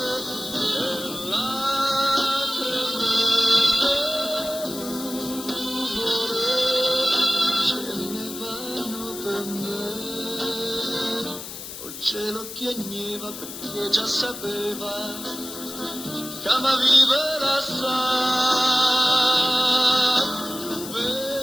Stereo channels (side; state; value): left; noise; hiss, 10 dB below the sound